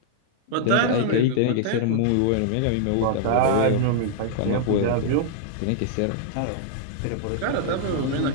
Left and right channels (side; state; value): both; different; correlation -0.01